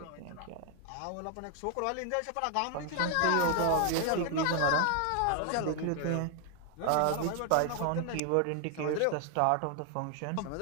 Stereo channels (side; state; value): both; different; correlation 0.00